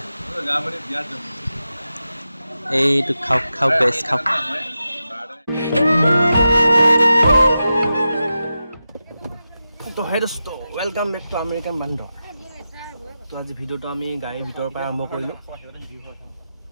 এইটো খাওক খাওক গাইছ খাওক। তো হে দোস্ত, ৱেলকাম বেক টু আমেৰিকান বান্দৰ। তো আজি ভিডিঅ'টো আমি গাড়ীৰ ভিতৰৰ পৰা আৰম্ভ কৰিলোঁ।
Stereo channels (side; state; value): both; inverted; correlation -0.91